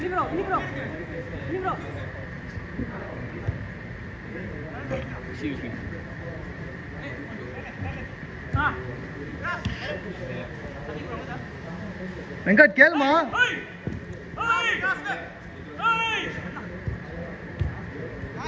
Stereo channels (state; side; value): identical; both; correlation 1.00